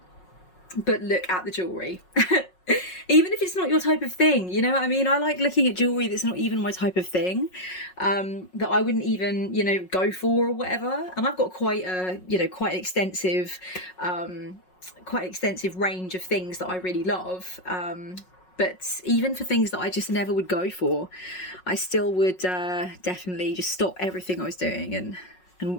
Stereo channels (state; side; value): late; right; 5.5 ms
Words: but look at the jewellery. Even if it's not your type of thing, you know what I mean? I like looking at jewellery that's not even my type of thing, that I wouldn't even, you know, go for or whatever. And I've got quite a, you know, quite an extensive range of things that I really love. But even for things that I just never would go for, I still would definitely just stop everything I was doing and